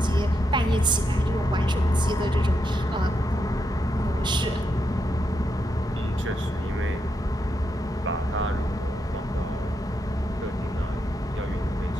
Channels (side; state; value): both; normal; correlation 0.83